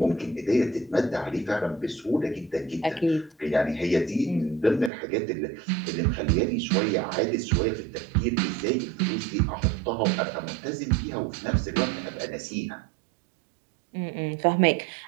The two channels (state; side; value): drops out; left; at 4.9 s